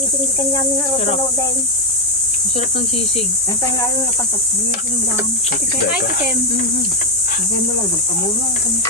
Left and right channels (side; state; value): both; normal; correlation 0.02